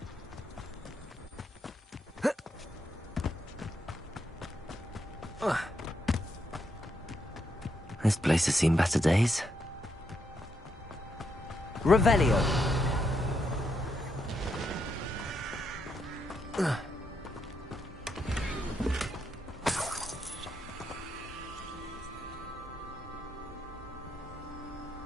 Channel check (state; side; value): normal; both; correlation 0.80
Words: This place has seen better days. Revelio.